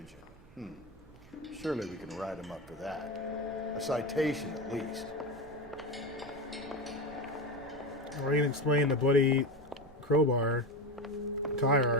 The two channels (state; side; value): noise; right; rumble, 23 dB below the sound